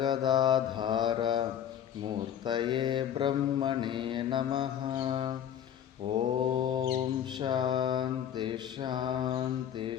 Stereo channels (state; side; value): quieter; right; 9.7 dB